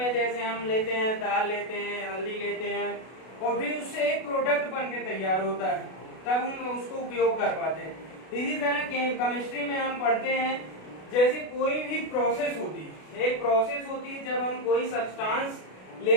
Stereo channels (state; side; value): late; right; 32 ms